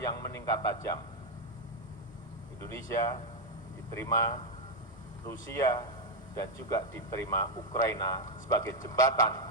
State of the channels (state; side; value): normal; both; correlation 0.03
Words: meningkat tajam. Indonesia diterima Rusia dan juga diterima Ukraina sebagai jembatan